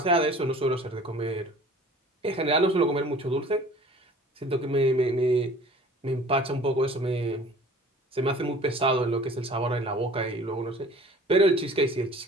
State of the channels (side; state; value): both; normal; correlation 0.47